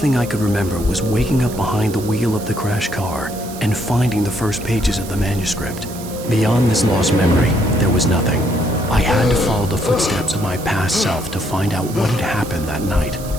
I could remember was waking up behind the wheel of the crashed car and finding the first pages of the manuscript. Beyond this lost memory, there was nothing. I had to follow the footsteps of my past self to find out what had happened that night.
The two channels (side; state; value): right; noise; hiss, 15 dB below the sound